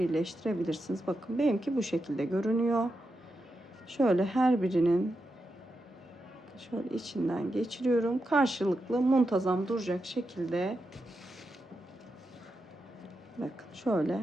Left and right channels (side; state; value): both; normal; correlation 0.87